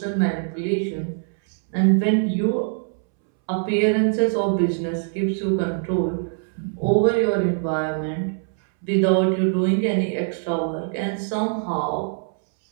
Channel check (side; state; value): left; silent; 64 dB below the other